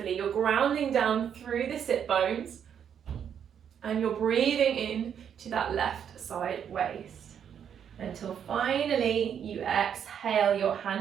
You're grounding down through the sit bones. And you're breathing in to that left side waist. Until finally you exhale, your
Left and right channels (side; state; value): left; quieter; 8.4 dB